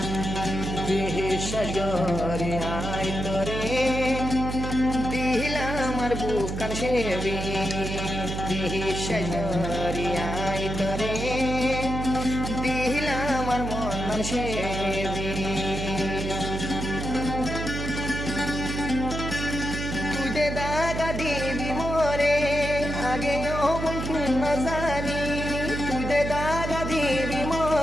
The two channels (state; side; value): noise; right; hum, 4 dB below the sound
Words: সাগরে আয় তোরে দিলাম আর বুকান সেবি সাগরে আয় তোরে দিলাম আর মন সেবি তুই দে দাগা দিবি মোরে আগে বন্ধু না জানি তুই দে দাগা দিবি